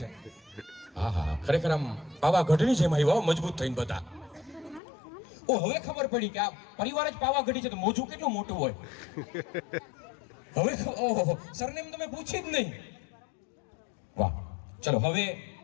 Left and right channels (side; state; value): right; drops out; at 4.8 s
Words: છે? હા હા, ખરેખર આમ પાવાગઢની જેમ આવ્યા મજબૂત થઈને બધા. ઓ હવે ખબર પડી કે આ પરિવાર જ પાવાગઢી છે તો મોજું કેટલું મોટું હોય. હવે ઓહો, સરનેમ તમે પૂછી જ નહીં. વાહ. ચલો હવે